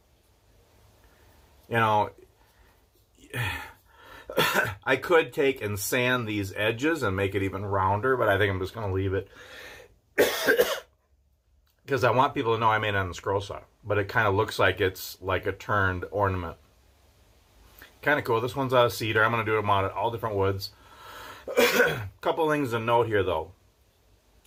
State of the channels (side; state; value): both; identical; correlation 1.00